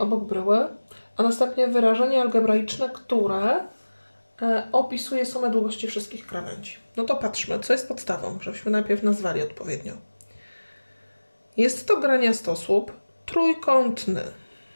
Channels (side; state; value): both; inverted; correlation -1.00